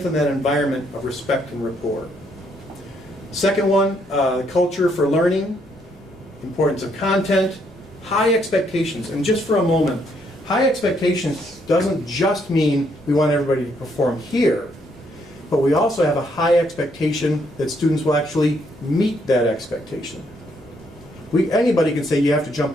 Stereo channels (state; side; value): noise; left; rumble, 27 dB below the sound